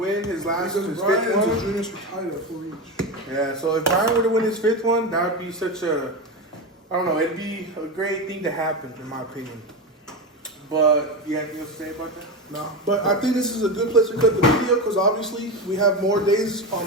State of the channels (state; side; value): normal; both; correlation 0.18